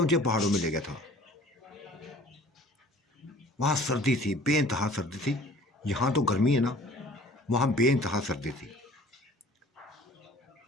पहाड़ों में ले गया था। वहाँ सर्दी थी, बेइंतहा सर्दी थी। यहाँ तो गर्मी है ना, वहाँ बेइंतहा सर्दी थी।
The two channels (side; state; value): both; normal; correlation 0.50